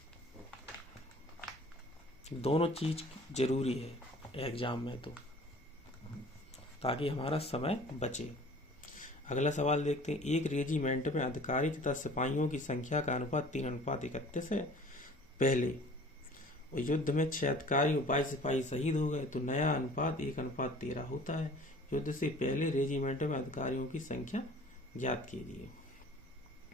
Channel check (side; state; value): both; normal; correlation 0.48